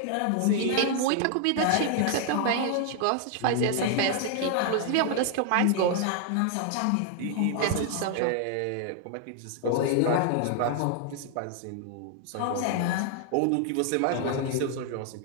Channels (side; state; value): both; different; correlation 0.00